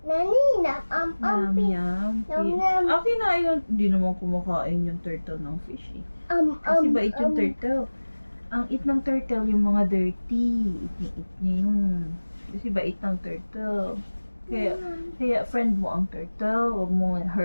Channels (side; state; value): both; inverted; correlation -1.00